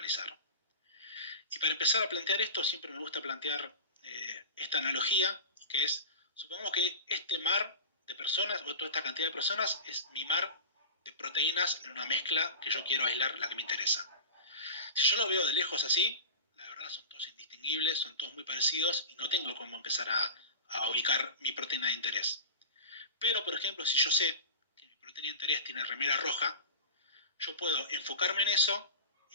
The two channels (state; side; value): inverted; both; correlation -0.31